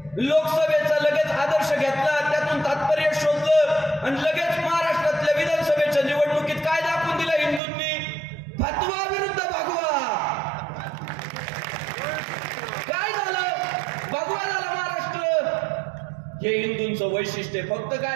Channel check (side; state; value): left; drops out; at 7.6 s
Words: लोकसभेचा लगेच आदर्श घेतला, त्यातून तात्पर्य शोधलं, आणि लगेच महाराष्ट्रातल्या विधानसभेच्या निवडणुकीत काय दाखवून दिलं हिंदूंनी? फतवा विरुद्ध भगवा. काय झालं? भगवा झाला महाराष्ट्र. हे हिंदूंचं वैशिष्ट्य. फक्त